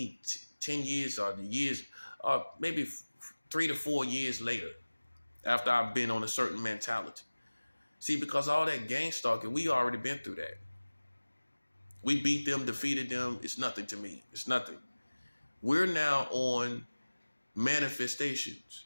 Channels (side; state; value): both; inverted; correlation -1.00